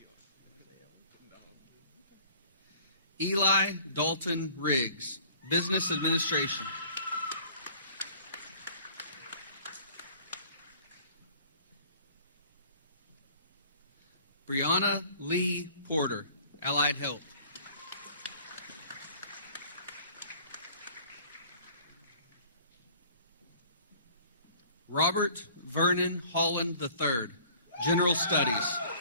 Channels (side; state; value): both; inverted; correlation -0.51